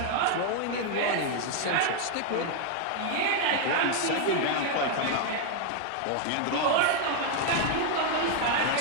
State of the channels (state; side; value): different; both; correlation 0.00